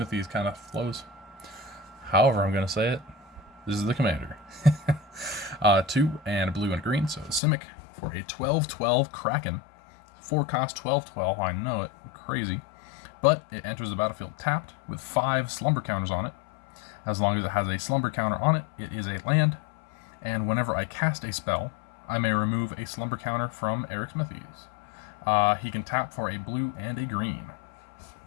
kind of flows. However I'm going to say it, this is the commander. 2 and blue and green, so Simic for a 12/12 Kraken. 4 cost 12/12, I know it, crazy. But it enters the battlefield tapped with 5 slumber counters on it. As long as it has a slumber counter on it, it is a land. And whenever I cast a spell, I may remove a slumber counter from Arixmethes. He can tap for a blue and a green.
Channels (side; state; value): right; drops out; at 7.4 s